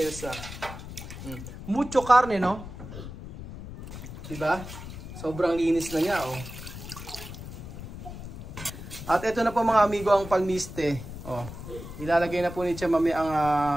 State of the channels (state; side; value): noise; left; rumble, 11 dB below the sound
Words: Mucho karne, no? Diba? Sobrang linis na niya, oh. At ito na po mga amigo ang palmiste. Oh. Ilalagay na po ni Chamame ang